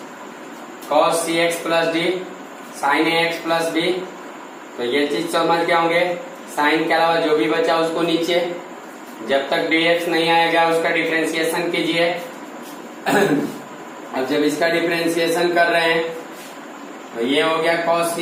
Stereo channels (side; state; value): both; identical; correlation 1.00